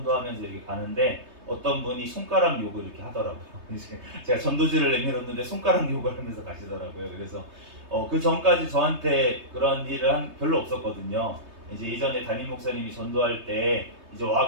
이렇게 가는데 어떤 분이 손가락 욕을 이렇게 하더라고요. 제가 전도지를 내밀었는데 손가락 욕을 하면서 가시더라고요. 그래서 그 전까지 저한테 그런 일을 별로 없었거든요. 이제 예전에 담임 목사님이 전도할 때 이제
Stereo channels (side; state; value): left; late; 3.2 ms